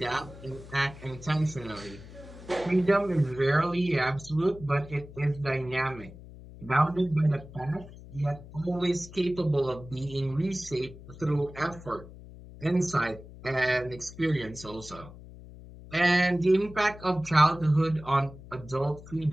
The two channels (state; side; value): noise; left; hum, 17 dB below the sound